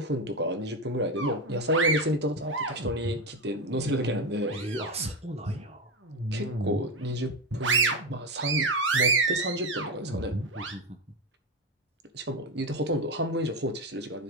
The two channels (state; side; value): normal; both; correlation 0.14